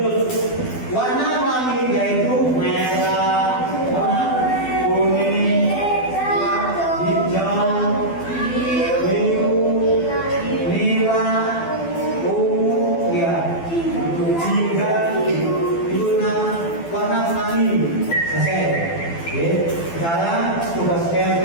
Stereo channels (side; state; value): right; late; 12 ms